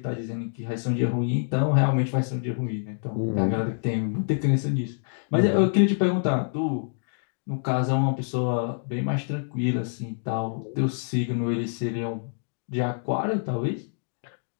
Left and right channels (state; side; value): silent; right; digital silence